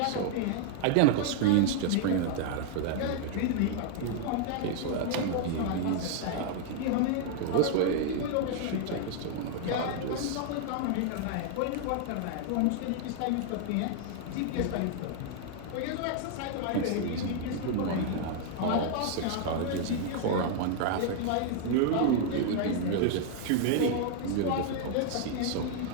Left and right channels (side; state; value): both; different; correlation 0.00